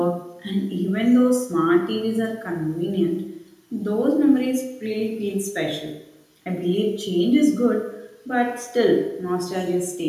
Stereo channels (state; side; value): identical; both; correlation 1.00